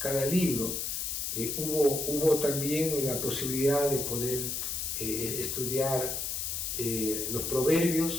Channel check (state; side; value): noise; left; hiss, 2 dB below the sound